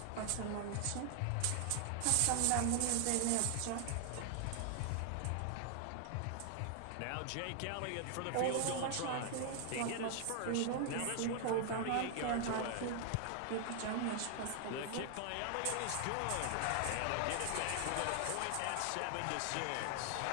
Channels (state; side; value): different; both; correlation 0.00